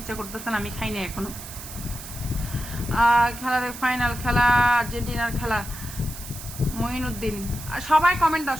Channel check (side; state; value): right; noise; hiss, 12 dB below the sound